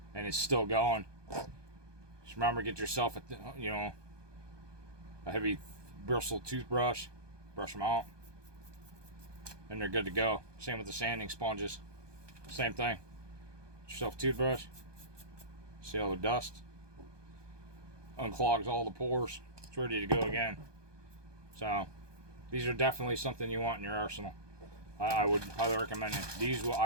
and it's still going. Just remember, get yourself a heavy bristle toothbrush, brush them out, and they're good to go. Same with the sanding sponges. Same thing. Get yourself a toothbrush. See all the dust. Unclogs all the pores. It's ready to go again. So these are definitely something you want in your arsenal. I would highly recommend it. These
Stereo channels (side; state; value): left; late; 1.2 ms